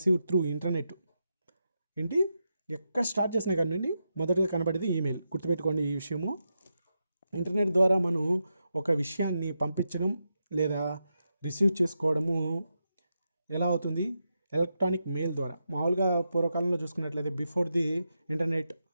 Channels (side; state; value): both; inverted; correlation -0.86